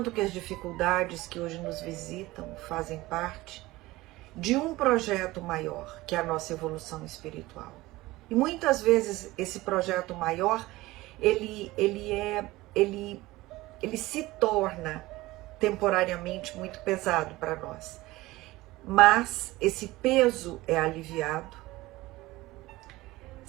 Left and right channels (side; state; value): left; quieter; 19.1 dB